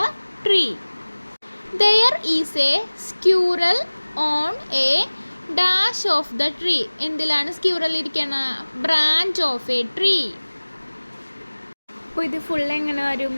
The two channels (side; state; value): both; inverted; correlation -1.00